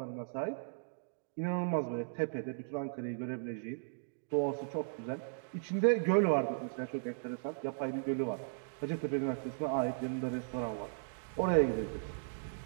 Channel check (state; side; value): silent; left; digital silence